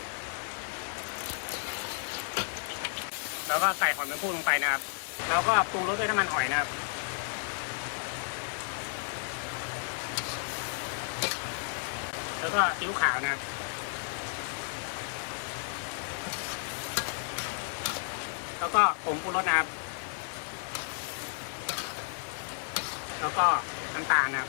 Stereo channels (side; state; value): right; silent; digital silence